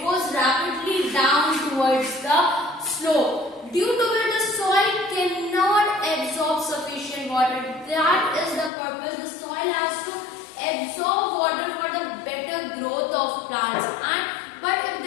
goes rapidly down towards the slope. Due to which the soil cannot absorb sufficient water. That is the purpose. The soil has to absorb water for the better growth of plants. But if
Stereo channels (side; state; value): right; drops out; at 8.7 s